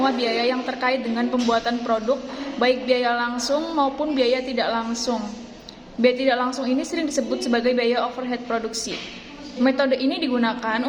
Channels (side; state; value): both; identical; correlation 1.00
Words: biaya yang terkait dengan pembuatan produk, baik biaya langsung maupun biaya tidak langsung. Biaya tidak langsung ini sering disebut sebagai biaya overhead produksi. Metode ini digunakan